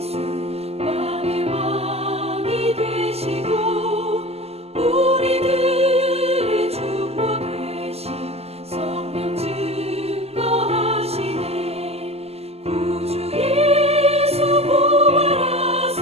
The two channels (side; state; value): left; late; 0.30 ms